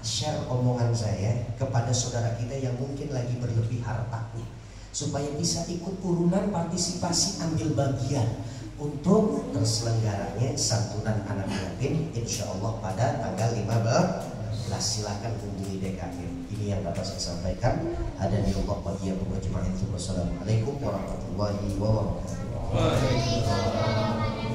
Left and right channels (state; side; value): identical; both; correlation 1.00